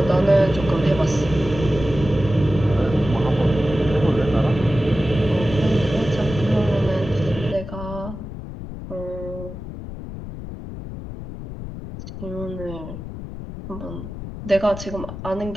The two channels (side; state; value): left; noise; rumble, 10 dB below the sound